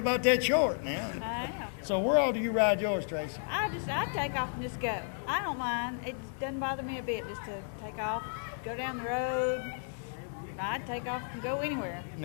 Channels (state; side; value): silent; right; digital silence